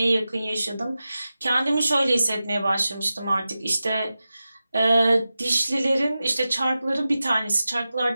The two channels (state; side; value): inverted; both; correlation -0.94